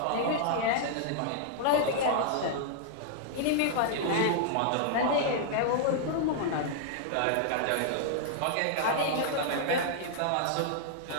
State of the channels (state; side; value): different; both; correlation -0.01